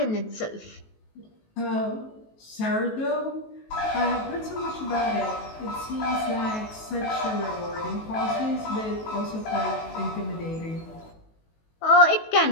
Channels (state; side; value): late; right; 19 ms